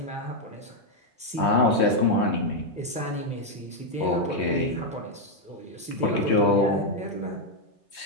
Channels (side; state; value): both; normal; correlation 0.01